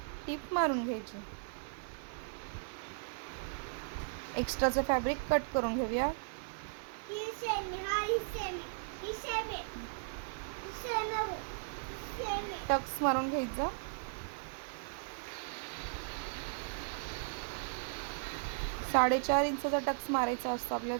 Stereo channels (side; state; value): left; silent; 53 dB below the other